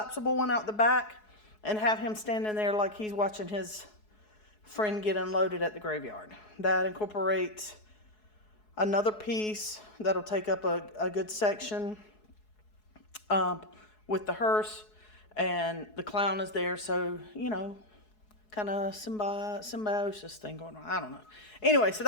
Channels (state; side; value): late; right; 4.7 ms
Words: one out the back and have him standing there like he's watching his friend get unloaded at the graveyard. That incorporates another piece that'll take up a good section with the hearse, and the clown is there, so kind of symbiosis thing going on. I don't know. Anyway, so